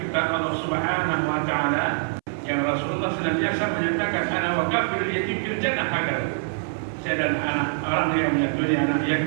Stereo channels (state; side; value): silent; left; 62 dB below the other